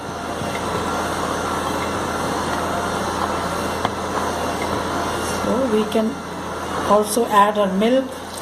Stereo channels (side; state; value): both; identical; correlation 1.00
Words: we can also add our milk